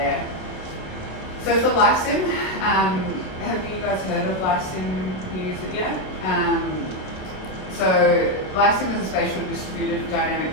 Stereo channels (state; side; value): late; right; 27 ms